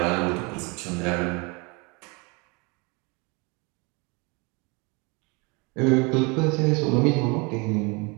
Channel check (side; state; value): left; quieter; 28.9 dB